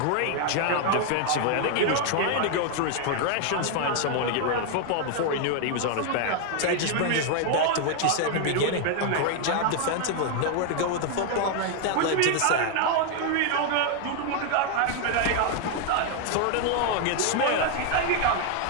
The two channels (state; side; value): different; both; correlation 0.00